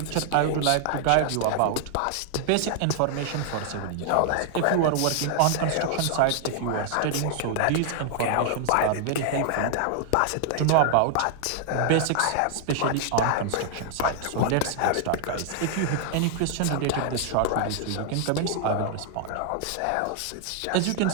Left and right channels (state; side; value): different; both; correlation 0.00